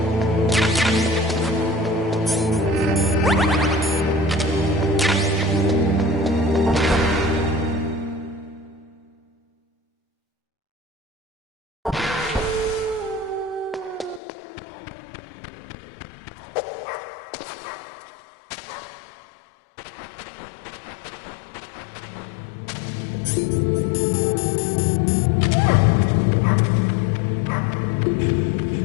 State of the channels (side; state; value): right; drops out; at 14.2 s